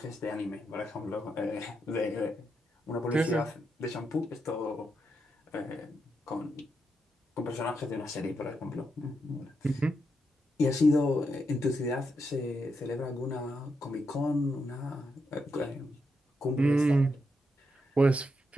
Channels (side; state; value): both; normal; correlation 0.83